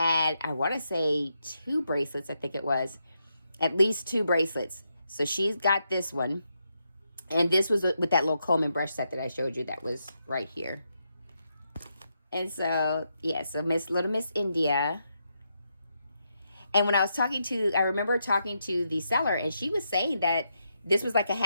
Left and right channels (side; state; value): both; inverted; correlation -0.82